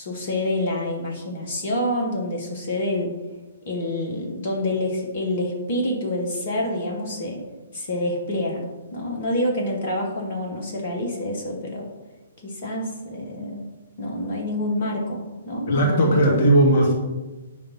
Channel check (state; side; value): inverted; both; correlation -0.50